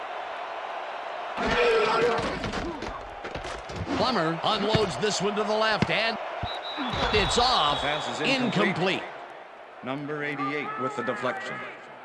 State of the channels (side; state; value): both; identical; correlation 1.00